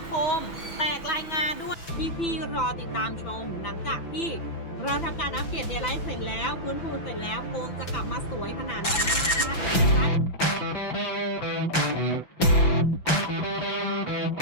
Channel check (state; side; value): late; right; 5.9 ms